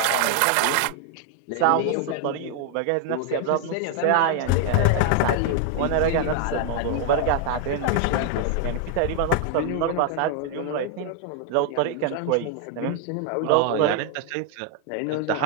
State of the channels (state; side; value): different; both; correlation 0.00